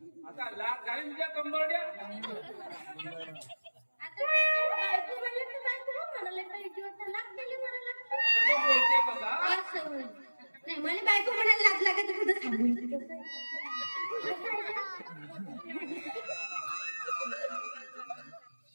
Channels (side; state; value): both; inverted; correlation -1.00